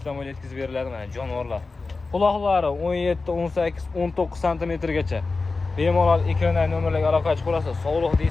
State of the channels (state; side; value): quieter; right; 3.9 dB